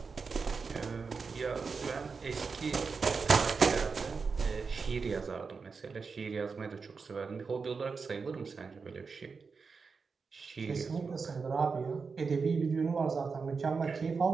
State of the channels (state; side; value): quieter; left; 5.0 dB